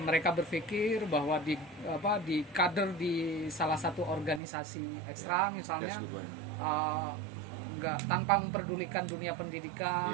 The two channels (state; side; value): drops out; left; at 4.4 s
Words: berpikir bahwa di kader di salah satu organisasi ekstra misalnya tanpa memperdulikan dunia